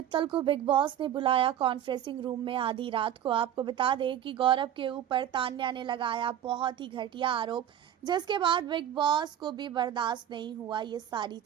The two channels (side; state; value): left; quieter; 10.5 dB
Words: को big boss ने बुलाया कॉन्फ्रेंसिंग रूम में आधी रात को। आपको बता दें कि गौरव के ऊपर तान्या ने लगाया बहुत ही घटिया आरोप, जिसके बाद बिग बॉस को भी बर्दाश्त नहीं हुआ ये सारी